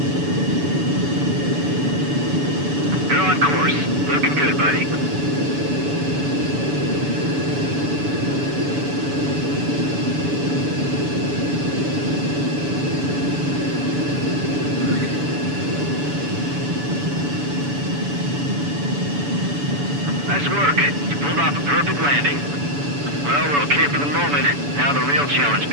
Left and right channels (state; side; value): late; left; 7.0 ms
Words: You're on course. Looking good, buddy. Nice work. You pulled off a perfect landing. Well, we're okay for the moment. Now the real challenge